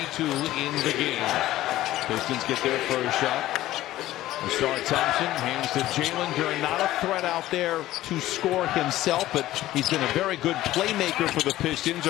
in the game. Pistons get their first shot. Star Thompson hands to Jalen Duren. Not a threat out there to score himself, but he's been a very good playmaker for the Pistons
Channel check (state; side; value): quieter; right; 15.1 dB